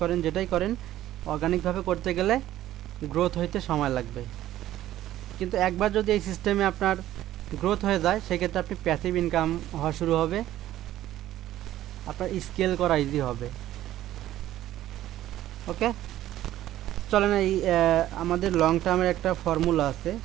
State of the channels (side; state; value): left; quieter; 13.6 dB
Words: করেন, যেটাই করেন অর্গানিকভাবে করতে গেলে গ্রোথ হইতে সময় লাগবে। কিন্তু একবার যদি এই সিস্টেমে আপনার গ্রোথ হয়ে যায় সেক্ষেত্রে আপনি প্যাসিভ ইনকাম হওয়া শুরু হবে, আপনার স্কেল করা ইজি হবে। ওকে, চলেন এই আমাদের লং টার্মের একটা ফর্মুলা আছে।